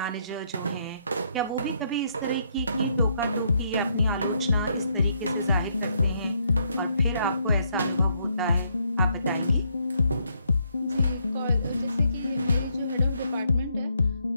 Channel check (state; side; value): inverted; both; correlation -0.73